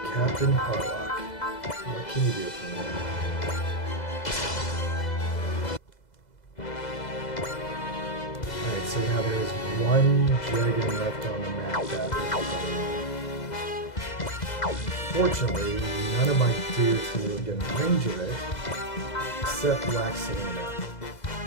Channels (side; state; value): right; late; 2.0 ms